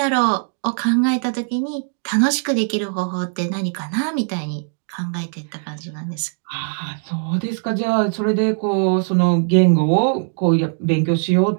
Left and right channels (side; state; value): left; silent; digital silence